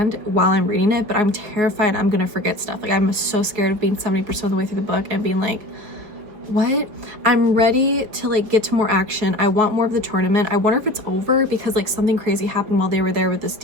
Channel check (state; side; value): late; left; 4.7 ms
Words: while I'm reading it, but I'm terrified I'm gonna forget stuff. Like, I'm so scared of being 70% of the way through the book and being like, what? I'm ready to like get to more action. I want more of the tournament. I wonder if it's over, because like something crazy happened while they were there, with this